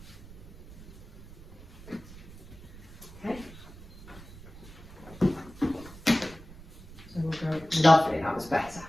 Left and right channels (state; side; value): noise; right; rumble, 17 dB below the sound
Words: Lovely, that was better.